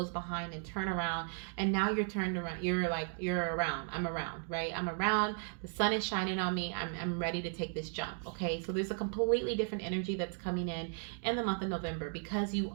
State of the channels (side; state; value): left; silent; 54 dB below the other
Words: behind and turn around. And now you're turned around. You're around. I'm around, right? I'm around. The sun is shining on me. I'm ready to take this jump. Okay. So there's a completely different energy that's coming in the month of November because you